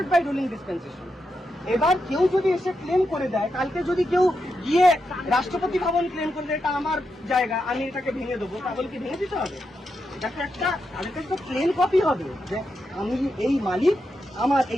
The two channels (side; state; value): both; normal; correlation 0.85